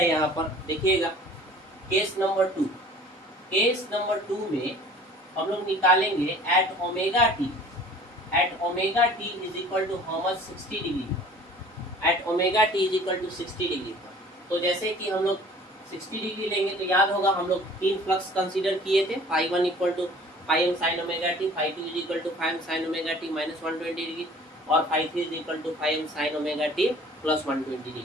यहाँ पर देखिएगा केस नंबर 2 में हम लोग निकालेंगे at omega T is equal to how much 60 degree, at omega T is equal to 60 degree पर। तो जैसे कि हम लोग 60 डिग्री लेंगे तो याद होगा हम लोग 3 फ्लक्स कंसीडर किए थे, φ1 equal to φm sin omega t, φ2 is equal to φm sin omega T minus 120 degree और φ3 is equal to φm sin omega T plus 120 degree.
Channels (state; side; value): normal; both; correlation 0.49